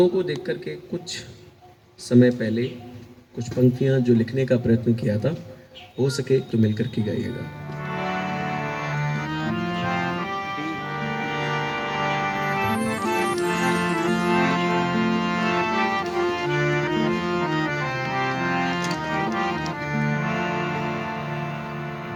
को देख कर के कुछ समय पहले कुछ पंक्तियाँ जो लिखने का प्रयत्न किया था, हो सके तो मिलकर के गाइएगा।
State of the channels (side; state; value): both; identical; correlation 1.00